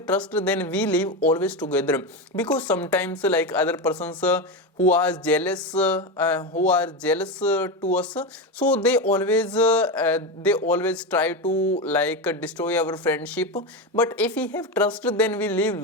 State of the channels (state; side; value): normal; both; correlation 0.16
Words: trust, then we live always together, because sometimes other persons who are jealous to us, so they always try to like destroy our friendship. But if we have trust, then we live